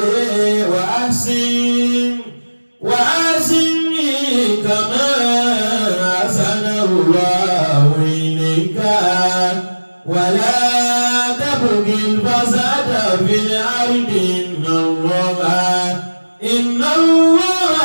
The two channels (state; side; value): inverted; both; correlation -1.00